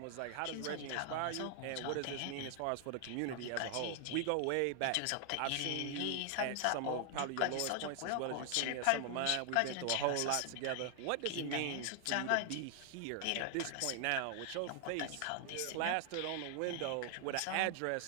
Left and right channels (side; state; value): both; different; correlation 0.00